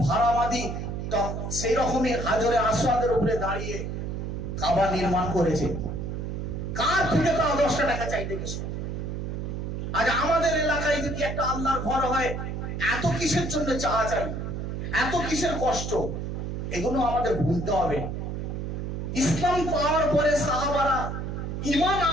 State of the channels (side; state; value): right; noise; hum, 4 dB below the sound